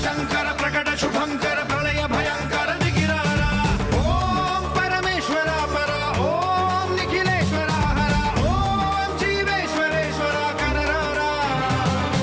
శంకర ప్రకట శుభంకర ప్రళయ భయంకర దిగిరారా. ఓం పరమేశ్వర పర, ఓం నిఖిలేశ్వర హర, ఓం జీవేశ్వరేశ్వర కరరారా.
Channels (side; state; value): both; identical; correlation 1.00